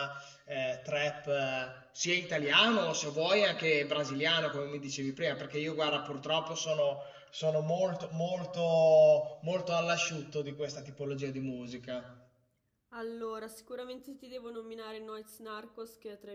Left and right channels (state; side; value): identical; both; correlation 1.00